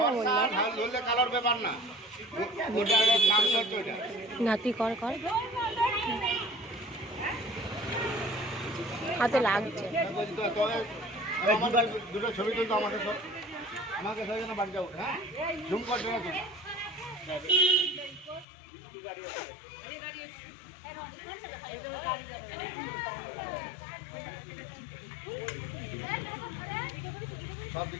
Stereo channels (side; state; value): right; drops out; at 18.4 s